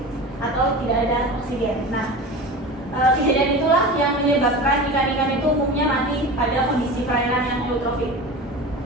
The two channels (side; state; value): both; normal; correlation 0.31